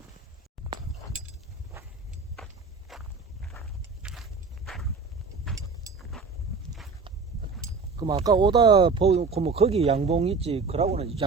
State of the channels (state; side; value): quieter; left; 4.6 dB